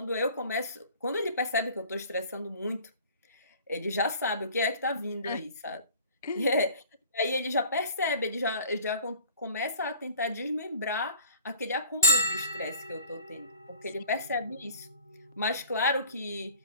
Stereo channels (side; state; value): both; inverted; correlation -0.46